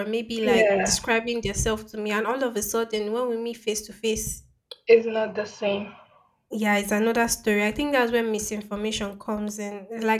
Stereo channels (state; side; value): identical; both; correlation 1.00